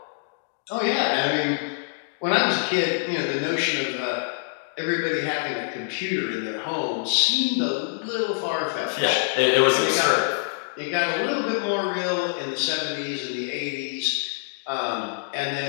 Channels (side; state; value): right; silent; digital silence